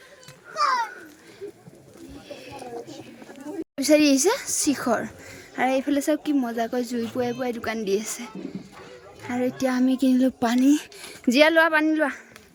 বিচাৰি আহিছে শিখৰ আৰু এইফালে চাওক কি মজাকৈ জুই পুৱাই পুৱাই দোকান দি আছে আৰু এতিয়া আমি কিনিলোঁ পানী জীয়া লোৱা পানী লোৱা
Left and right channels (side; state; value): both; identical; correlation 1.00